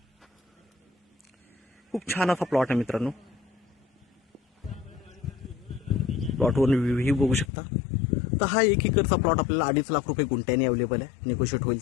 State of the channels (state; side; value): drops out; right; at 7.5 s